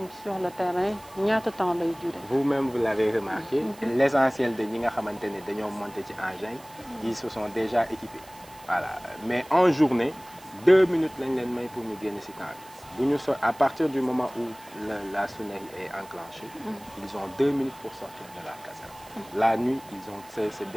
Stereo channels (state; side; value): noise; right; hiss, 22 dB below the sound